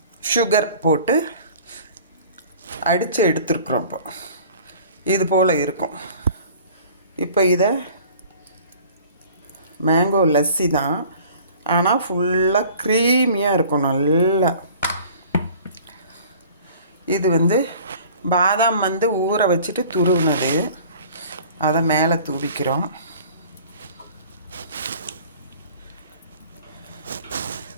சுகர் போட்டு அடித்து எடுத்துருக்குறோம். இப்போ இது போல் இருக்கும். இப்போ இதை மேங்கோ லஸ்ஸி தான், ஆனால் ஃபுல்லாக க்ரீமியாக இருக்கும் நல்லா. இது பாதாம் ஊற வச்சுட்டு துருவுனது, அதை மேலே தூவிக்கிறோம்.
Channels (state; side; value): inverted; both; correlation -0.48